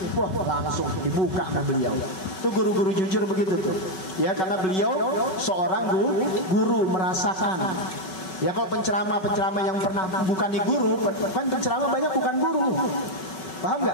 Wah langsung dibuka sama beliau. Itu guru-guru jujur begitu tuh. Ya karena beliau seorang guru merasakan. Ya kalau penceramah yang pernah bukan di guru, kan penceramah banyak bukan guru. Paham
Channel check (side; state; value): right; late; 5.3 ms